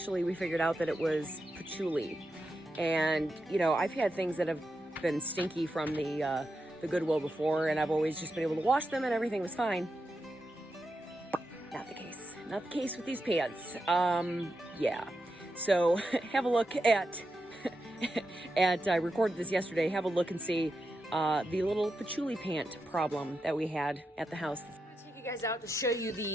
we figured out that it was patchouli. And, you know, I've had things that have been stinky from the Goodwill before, and I've always just been able to wash them and everything was fine. Not the case. Not the case with these pants. Yeah. So have a look at, I recorded this yesterday, have a look and see the little patchouli pant problem that we had at the house. You guys out to show you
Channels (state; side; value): normal; both; correlation 0.87